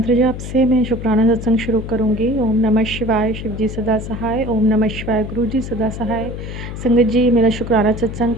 जाप से मैं शुक्राना सत्संग शुरू करूँगी। ओम नमः शिवाय, शिव जी सदा सहाय। ओम नमः शिवाय, गुरु जी सदा सहाय। संगत जी, मेरा शुक्राना सत्संग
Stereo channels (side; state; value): left; noise; hum, 8 dB below the sound